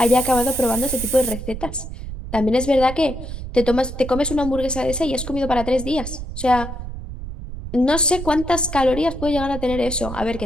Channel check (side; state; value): right; noise; rumble, 8 dB below the sound